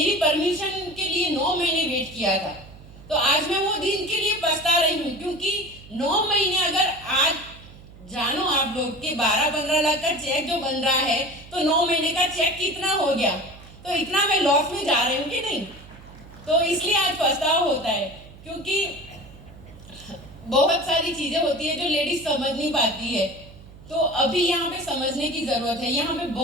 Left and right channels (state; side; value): noise; right; hum, 19 dB below the sound